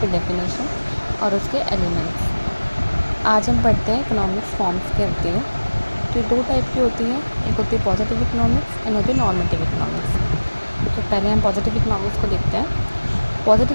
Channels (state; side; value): inverted; both; correlation -1.00